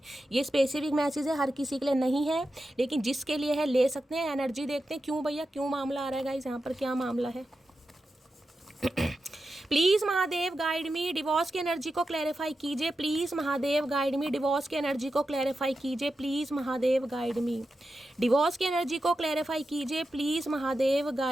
ये स्पेसिफिक मैसेज है, हर किसी के लिए नहीं है, लेकिन जिसके लिए है ले सकते हैं। एनर्जी देखते हैं क्यों भैया, क्यों मामला आ रहा है गाइस, यहाँ पर क्या मामला है। Please Mahadev guide me. Divorce की एनर्जी को क्लैरिफाई कीजिए please Mahadev guide me. Divorce की एनर्जी को क्लैरिफाई कीजिए please Mahadev guide me. Divorce की एनर्जी को क्लैरिफाई कीजिए please Mahadev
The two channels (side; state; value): both; normal; correlation 0.90